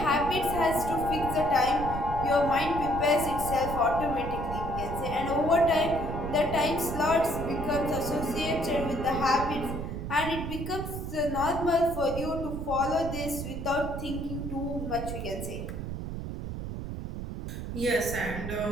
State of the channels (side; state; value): right; noise; rumble, 6 dB below the sound